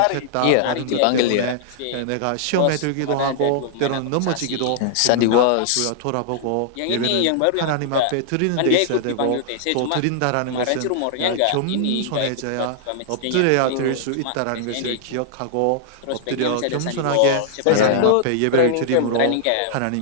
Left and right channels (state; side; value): different; both; correlation -0.01